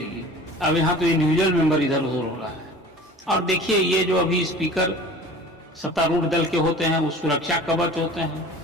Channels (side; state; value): both; normal; correlation 0.42